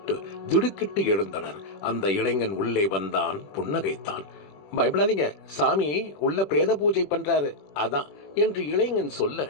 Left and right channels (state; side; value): late; right; 20 ms